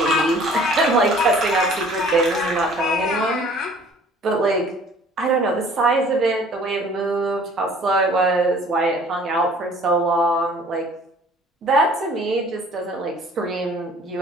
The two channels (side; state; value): both; normal; correlation 0.52